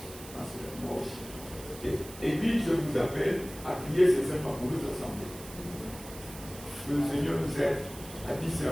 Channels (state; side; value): noise; right; hiss, 15 dB below the sound